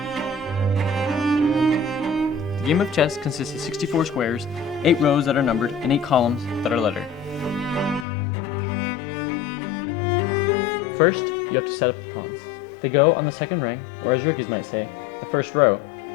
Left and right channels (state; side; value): drops out; right; at 8.1 s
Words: The game of chess consists of 64 squares, 8 rows that are numbered, and 8 columns that are lettered. First, you have to set up the pawns. They go on the second rank, or as rookies might say, the first row.